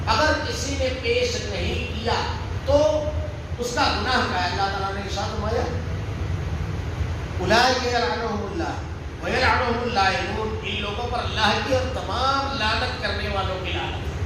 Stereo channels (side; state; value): both; identical; correlation 1.00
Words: اگر کسی نے پیش نہیں کیا تو اس کا گناہ کیا ہے؟ اللہ تعالیٰ نے ارشاد فرمایا اولئک یلعنہم اللہ ویلعنہم اللائنون، ان لوگوں پر اللہ کی اور تمام لعنت کرنے والوں کی لعنت.